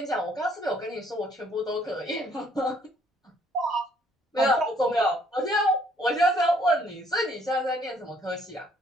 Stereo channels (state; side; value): normal; both; correlation 0.64